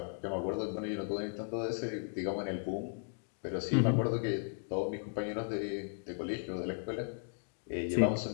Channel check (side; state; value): right; silent; digital silence